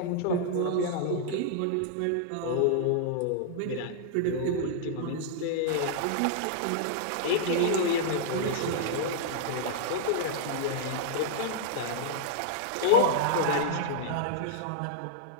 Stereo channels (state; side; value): different; both; correlation -0.01